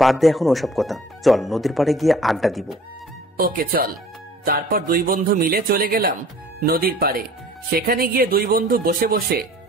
বাদ দে এখন ওসব কথা, চল নদীর পাড়ে গিয়ে আড্ডা দিব। ওকে চল। তারপর দুই বন্ধু মিলে চলে গেলাম নদীর পাড়ে। সেখানে গিয়ে দুই বন্ধু বসে বসে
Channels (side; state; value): both; normal; correlation 0.50